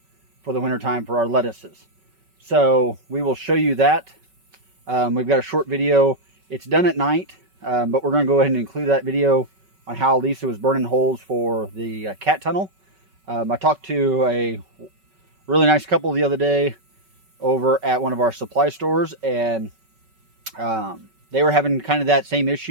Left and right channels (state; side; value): late; left; 5.3 ms